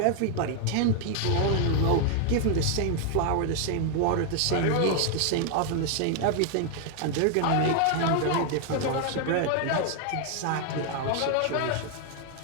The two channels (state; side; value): different; both; correlation 0.00